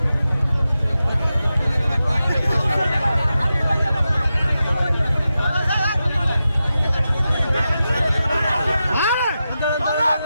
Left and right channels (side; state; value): both; inverted; correlation -0.91